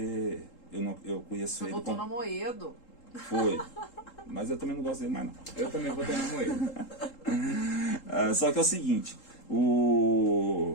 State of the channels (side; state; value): right; late; 3.8 ms